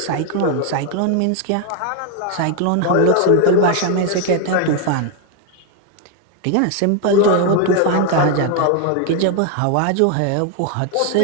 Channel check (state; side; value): different; both; correlation 0.01